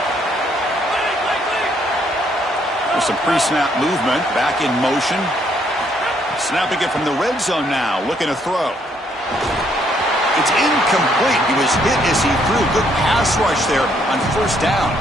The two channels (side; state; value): both; normal; correlation 0.69